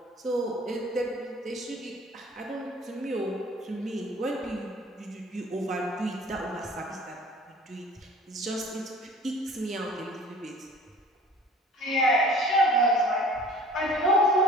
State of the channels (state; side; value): normal; both; correlation 0.47